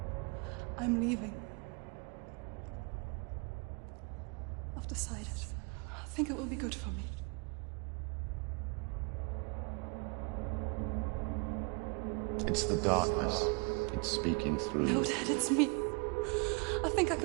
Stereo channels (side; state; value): left; quieter; 32.3 dB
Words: I'm leaving. I've decided. I think it will be good for me. It's the darkness. It's speaking through No, you. Dad, it's me. I think I